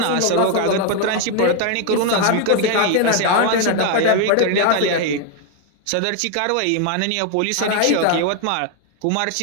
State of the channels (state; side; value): different; both; correlation 0.01